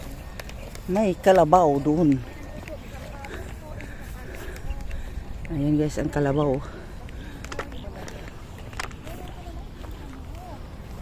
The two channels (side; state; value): both; identical; correlation 1.00